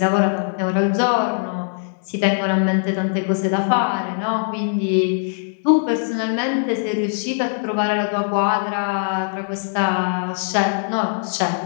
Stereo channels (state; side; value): silent; right; 62 dB below the other